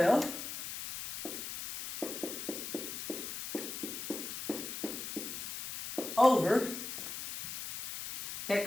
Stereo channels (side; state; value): left; noise; hiss, 7 dB below the sound